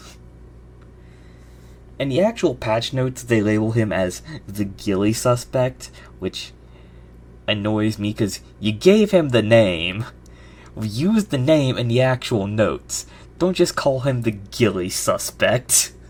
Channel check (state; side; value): identical; both; correlation 1.00